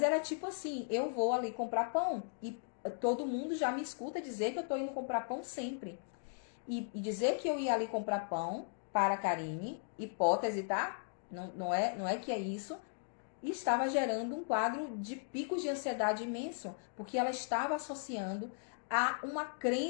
era tipo assim, eu vou ali comprar pão e todo mundo já me escuta dizer que eu tô indo comprar pão sempre. E dizer que eu ia ali comprar pão para a Karine, hipótese, tá? Não é que é isso. E estava gerando um quadro de picos de ansiedade imenso, porque ela estava associando a uma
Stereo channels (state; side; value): silent; right; digital silence